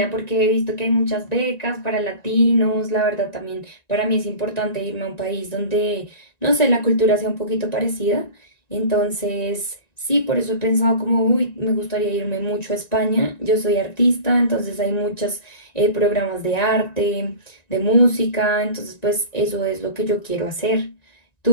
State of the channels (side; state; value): right; late; 1.9 ms